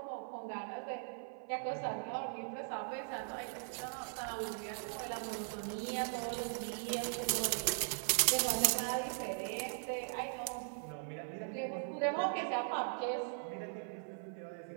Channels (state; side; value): silent; left; 51 dB below the other